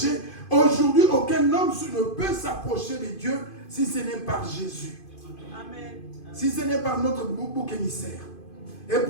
aujourd'hui, aucun homme ne peut s'approcher de Dieu si ce n'est par Jésus. Amen. Si ce n'est par notre bouc émissaire. Et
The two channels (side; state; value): right; late; 2.5 ms